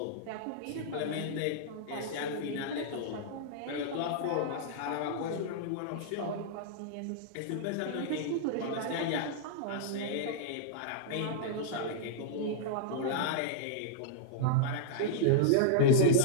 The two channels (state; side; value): different; both; correlation -0.02